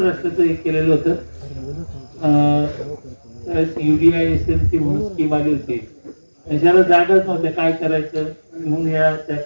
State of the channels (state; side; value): inverted; both; correlation -1.00